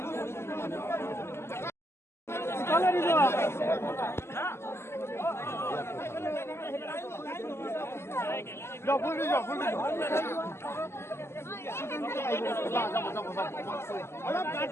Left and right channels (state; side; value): late; right; 0.12 ms